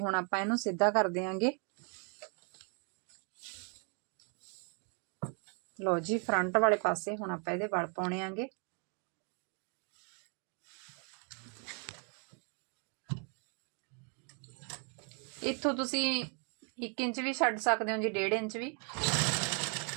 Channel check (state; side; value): quieter; left; 38.8 dB